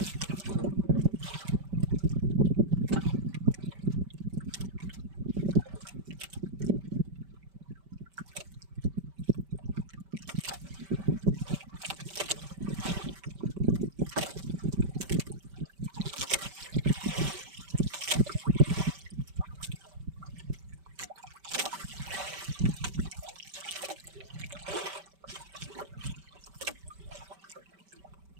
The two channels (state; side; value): late; left; 5.1 ms